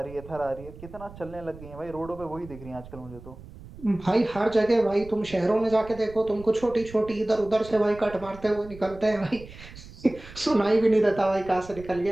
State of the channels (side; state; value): right; noise; rumble, 17 dB below the sound